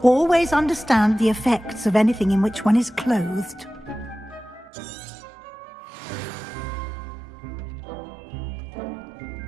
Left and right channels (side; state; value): left; drops out; at 4.7 s